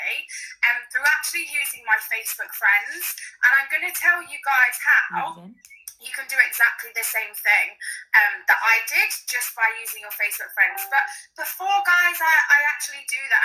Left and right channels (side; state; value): both; identical; correlation 1.00